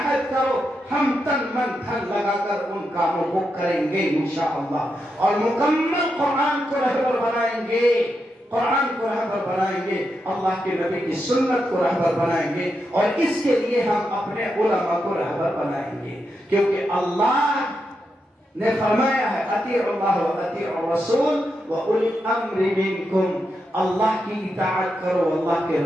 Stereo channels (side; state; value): both; normal; correlation 0.85